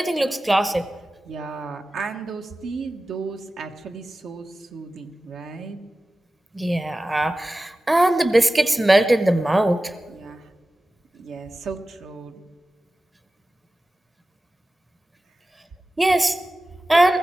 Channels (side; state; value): both; normal; correlation 0.95